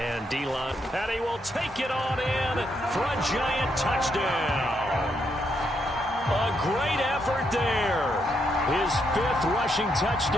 D-line, and he will take it on in for a Giant touchdown. A great effort there. His 5th rushing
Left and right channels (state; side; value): normal; both; correlation 0.78